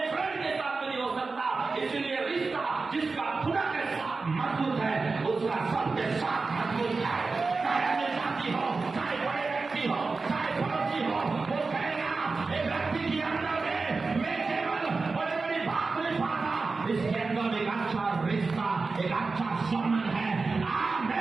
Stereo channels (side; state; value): left; quieter; 4.1 dB